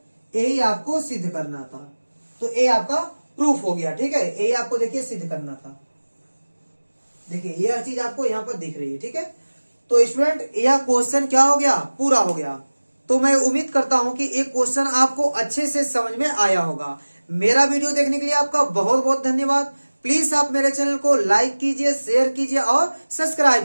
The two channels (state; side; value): inverted; both; correlation -1.00